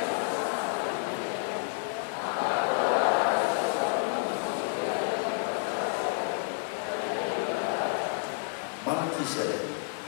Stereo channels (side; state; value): right; silent; 58 dB below the other